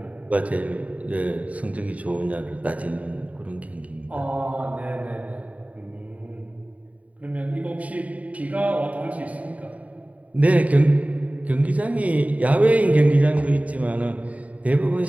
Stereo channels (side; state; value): left; late; 0.069 ms